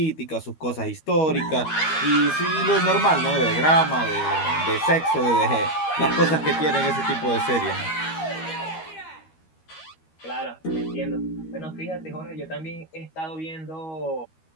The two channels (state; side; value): late; right; 13 ms